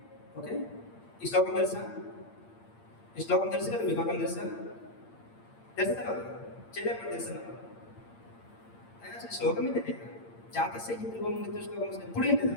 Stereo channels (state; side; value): late; right; 8.7 ms